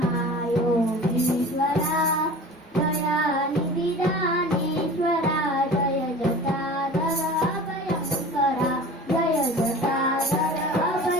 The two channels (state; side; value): normal; both; correlation 0.39